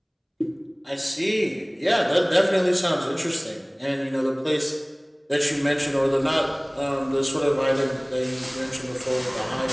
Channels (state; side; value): identical; both; correlation 1.00